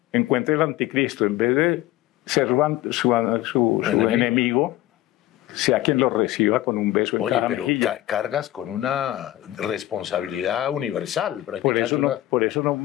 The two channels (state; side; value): quieter; right; 15.3 dB